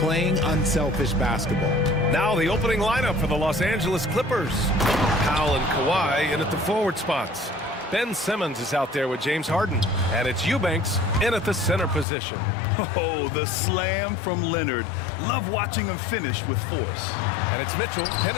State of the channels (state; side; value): drops out; right; at 12.1 s